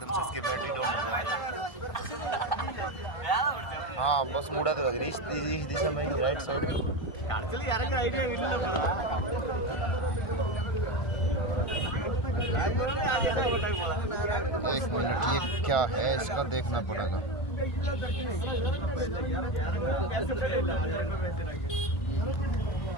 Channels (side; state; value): right; late; 1.5 ms